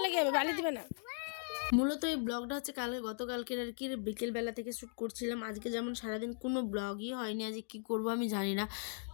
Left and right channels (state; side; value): silent; right; digital silence